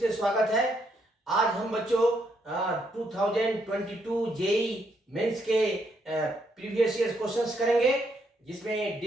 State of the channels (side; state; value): both; normal; correlation 0.75